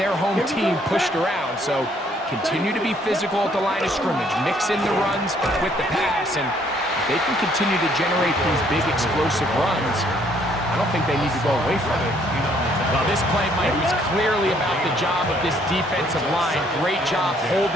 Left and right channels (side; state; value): both; normal; correlation 0.65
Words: home team pushed around. So continue to be physical at the line of scrimmage. Mix in the runs with the pass. And if they can continue to generate these big explosive runs, I don't think they need to go away from it. Well, this play, Mike, was clearly about the job of this defensive line. Great job